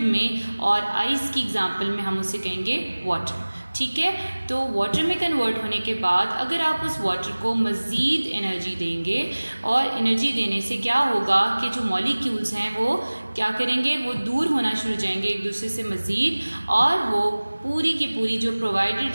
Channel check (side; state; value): both; inverted; correlation -1.00